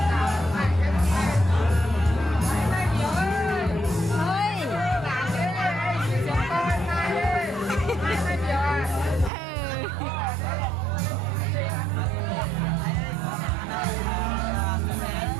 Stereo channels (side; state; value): left; drops out; at 9.3 s